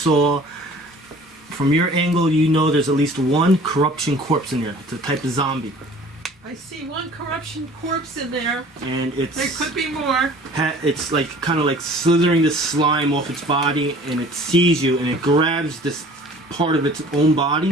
from your angle. You know there's at least one Corrption Corpse in there. It's a type of zombie, I see one Corruption Corpse in there. and There could be more. it's like kind of like slithering the slime off its body, and it sees you, and it grabs this part of its own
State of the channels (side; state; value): both; normal; correlation 0.48